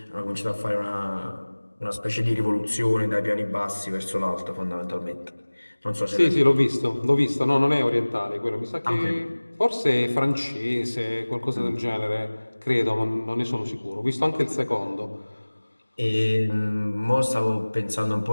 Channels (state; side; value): inverted; both; correlation -1.00